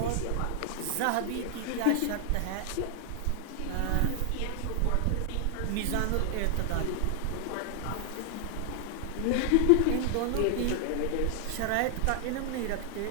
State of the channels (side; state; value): both; different; correlation 0.00